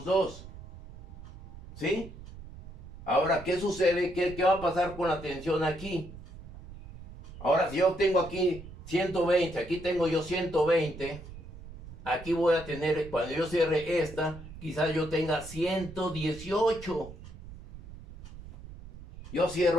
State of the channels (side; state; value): right; noise; rumble, 15 dB below the sound